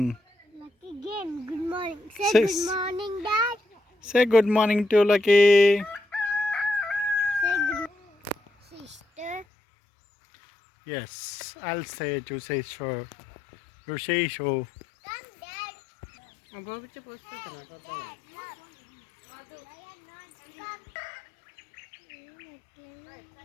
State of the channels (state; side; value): drops out; right; at 9.5 s